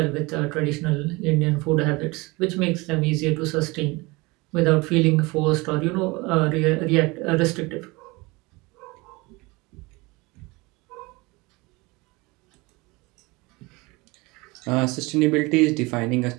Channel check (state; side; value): quieter; left; 24.2 dB